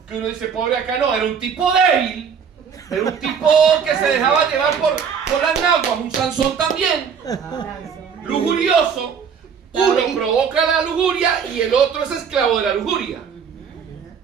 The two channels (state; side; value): quieter; left; 6.8 dB